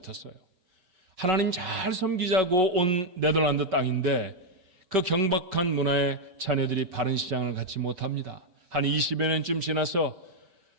하나님 잘 섬기자고 온 네덜란드 땅인데 그 경박한 문화에 자녀들이 바른 시장을 갖지 못합니다. 한 20여 년쯤 지나서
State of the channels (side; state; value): left; late; 5.1 ms